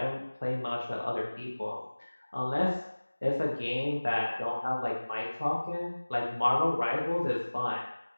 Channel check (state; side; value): inverted; both; correlation -1.00